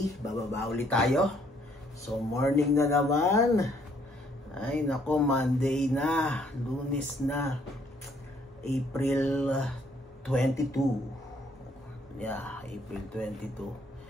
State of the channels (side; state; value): both; normal; correlation 0.66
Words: bababa ulit tayo. So, morning na naman. Ay, nako, Monday na, Lunes na, April 22. Yeah, April 22.